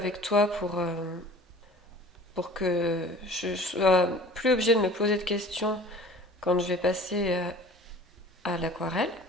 toi pour que je sois plus obligée de me poser de questions quand je vais passer à l'aquarelle.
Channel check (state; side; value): normal; both; correlation 0.45